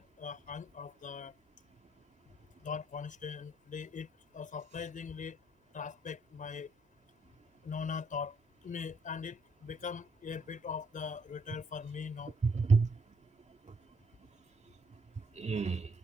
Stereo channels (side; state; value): both; normal; correlation 0.69